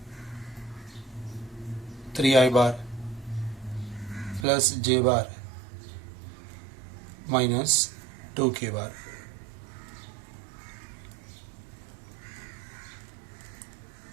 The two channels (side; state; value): left; drops out; at 4.5 s